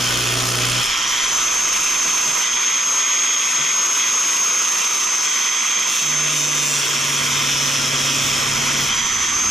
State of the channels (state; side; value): normal; both; correlation 0.79